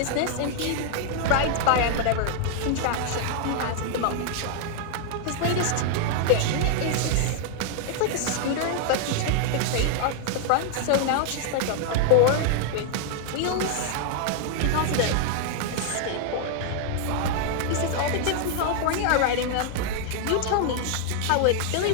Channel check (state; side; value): different; both; correlation 0.00